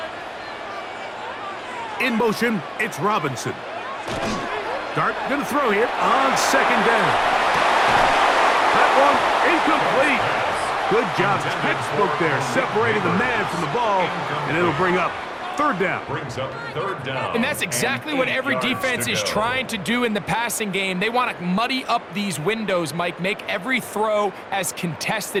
In motion, it's Robinson. Dart going to throw here on second down. That one incomplete. Good job, textbook there, separating the man from the ball, and it'll bring up third down. And that's exactly what every defense is trying to do in the passing game. They want to muddy up these windows, Mike, make every throw as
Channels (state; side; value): identical; both; correlation 1.00